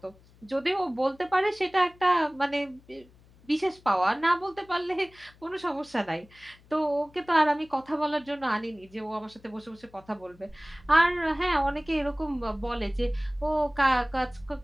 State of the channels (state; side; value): noise; left; hum, 27 dB below the sound